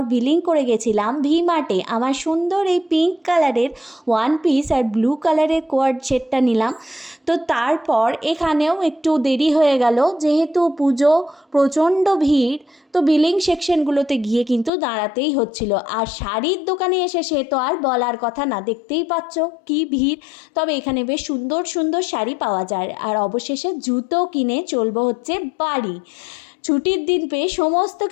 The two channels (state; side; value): drops out; right; at 14.7 s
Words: বিলিং করে গেছিলাম ভি মার্টে। আমার সুন্দর এই পিঙ্ক কালারের ওয়ান পিস আর ব্লু কালারের কোয়ার্ড সেটটা নিলাম। তো তারপর এখানেও একটু দেরি হয়ে গেল, যেহেতু পুজো, প্রচণ্ড ভিড়। তো বিলিং সেকশনগুলোতে গিয়ে কিন্তু দাঁড়াতেই হচ্ছিল। আর শাড়ির দোকানে এসে সে তো আর বলার কথা না, দেখতেই পাচ্ছ কি ভিড়। তবে এখানে বেশ সুন্দর সুন্দর শাড়ি পাওয়া যায়। আর অবশেষে জুতো কিনে চলবো হচ্ছে বাড়ি। ছুটির দিন পেয়ে সমস্ত